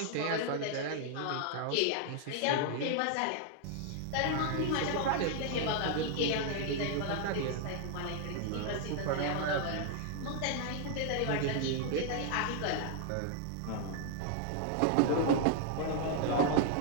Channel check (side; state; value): both; different; correlation 0.00